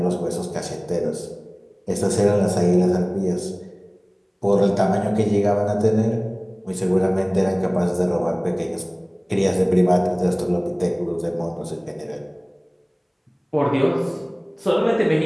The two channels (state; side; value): identical; both; correlation 1.00